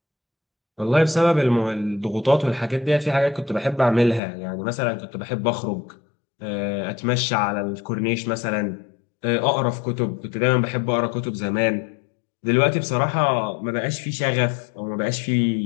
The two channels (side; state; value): right; drops out; at 4.2 s